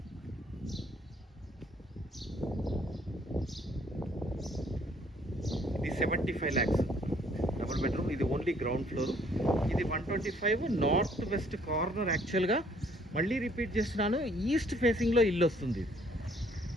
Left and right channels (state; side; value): normal; both; correlation 0.63